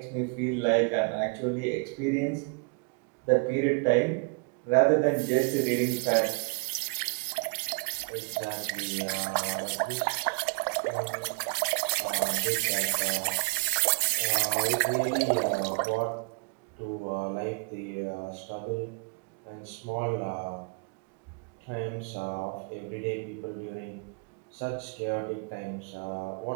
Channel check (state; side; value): quieter; left; 36.1 dB